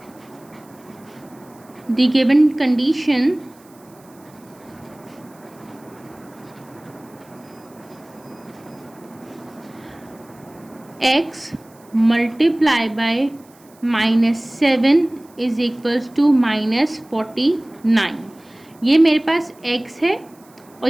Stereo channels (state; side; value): noise; right; hiss, 29 dB below the sound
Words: the given condition x multiply by -7 is equals to -49। ये मेरे पास x है और